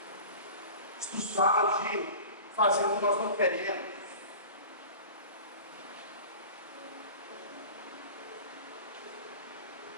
Isso fala de fazer o que nós não queremos.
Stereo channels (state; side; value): inverted; both; correlation -0.38